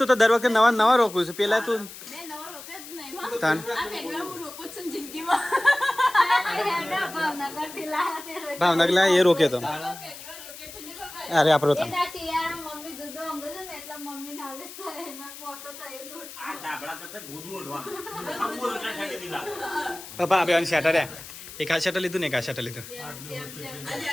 તો દર વખતે નવા નવા રોકું છું. પેલા તું ભાવનગર લા એ રોકે તો અરે આપણો તો પપ્પા બે શેટર એક આ શેટર લીધું ને એક આ શેટર લીધું.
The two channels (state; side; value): noise; left; hiss, 14 dB below the sound